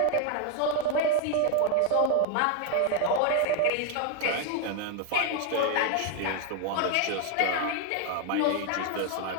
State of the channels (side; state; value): both; different; correlation 0.01